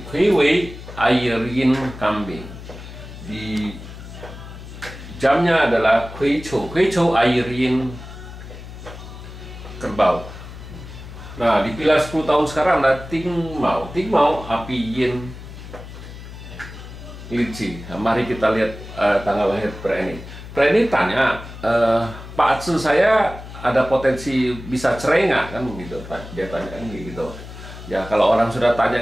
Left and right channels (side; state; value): left; noise; hum, 13 dB below the sound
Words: Wei air yin kambing. Di jamnya adalah Kui Chou air yin kerbau. Nah, di pilar 10 tahun sekarang ada Ting Mau api yin Lici. Nah, mari kita lihat tanggal lahir pria ini. Pria ini tanya, Pak Atsu, saya ada potensi bisa cerai nggak, kan begitu? Dia tanya kan gitu. Ya, kalau orang sudah